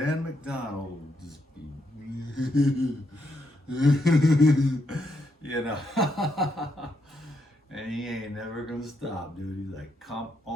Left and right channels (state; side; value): normal; both; correlation 0.78